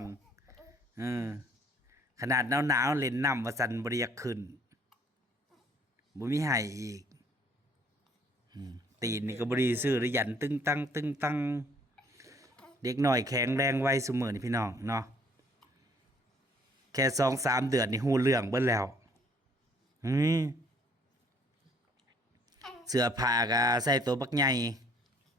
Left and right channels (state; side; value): normal; both; correlation 0.61